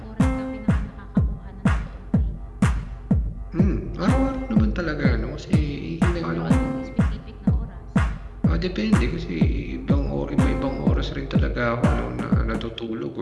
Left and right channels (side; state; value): both; identical; correlation 1.00